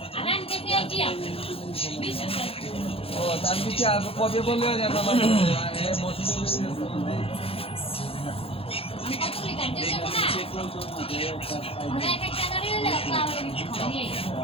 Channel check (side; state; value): right; late; 0.27 ms